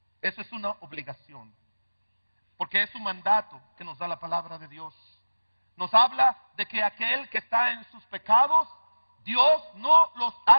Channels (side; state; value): both; inverted; correlation -1.00